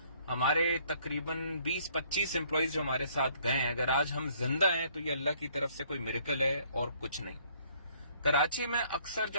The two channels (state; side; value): inverted; both; correlation -0.63